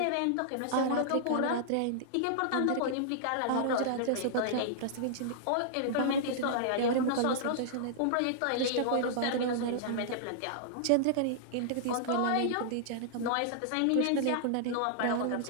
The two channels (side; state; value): both; different; correlation -0.02